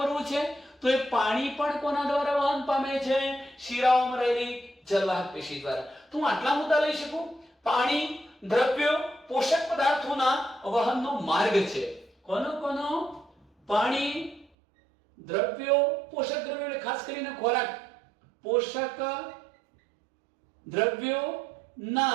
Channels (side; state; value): left; drops out; at 14.5 s